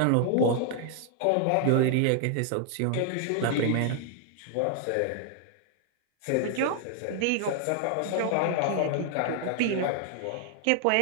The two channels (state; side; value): different; both; correlation 0.00